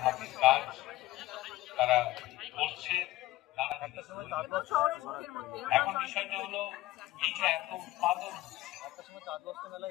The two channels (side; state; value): right; quieter; 17.1 dB